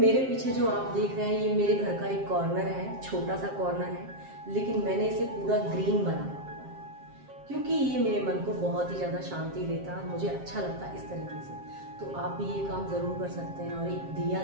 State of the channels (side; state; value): left; late; 7.5 ms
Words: पीछे जो आप देख रहे हैं ये मेरे घर का एक कॉर्नर है, छोटा सा कॉर्नर है, लेकिन मैंने इसे पूरा ग्रीन बनाया हुआ है क्योंकि ये मेरे मन को बहुत ही ज़्यादा शांति देता है, मुझे अच्छा लगता है इस तरीके से। तो आप भी ये काम ज़रूर कर सकते हैं। और एक दिया